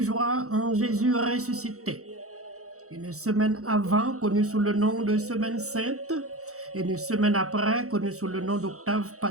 en Jésus ressuscité. Une semaine avant, connue sous le nom de Semaine Sainte, et une semaine après, connue sous le nom d'Octave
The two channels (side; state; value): left; late; 0.65 ms